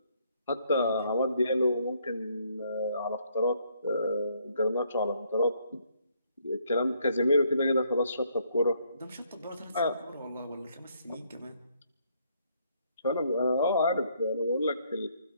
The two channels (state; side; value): inverted; both; correlation -0.70